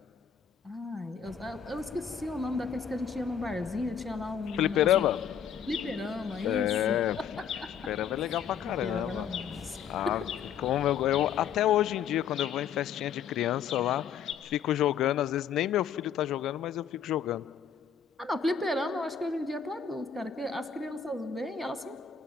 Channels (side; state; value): right; quieter; 7.9 dB